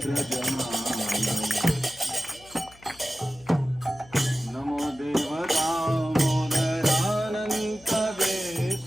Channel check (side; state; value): left; noise; hum, 25 dB below the sound